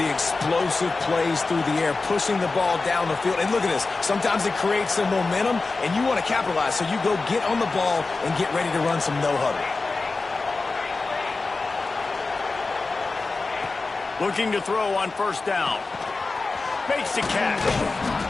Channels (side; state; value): right; quieter; 3.8 dB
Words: explosive plays through the air, pushing the ball down the field. And look at this. Sometimes it creates some momentum, and you want to capitalize. So you go get on the ball and get ready to run some no-huddle. Looking to throw on first down. Makes the catch.